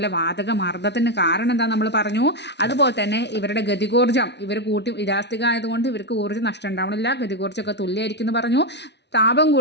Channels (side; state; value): right; late; 0.50 ms